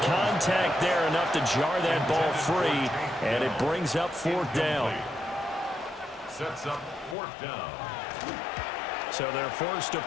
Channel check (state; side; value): drops out; right; at 7.2 s